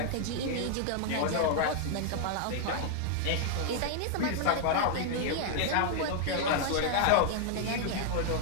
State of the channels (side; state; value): both; different; correlation 0.00